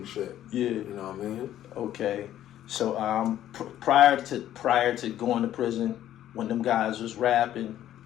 shit. Yeah. You know what I mean? Okay. So prior to going to prison, when them guys was rapping,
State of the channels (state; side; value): quieter; right; 12.1 dB